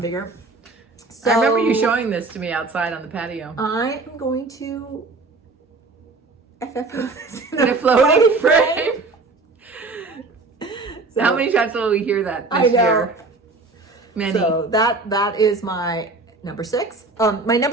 So I remember you showing this to me outside on the patio. I am going to FFOs in a floating frame. So, how many times will we hear that this year? Many. So that is my number 6. My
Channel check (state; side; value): quieter; left; 3.6 dB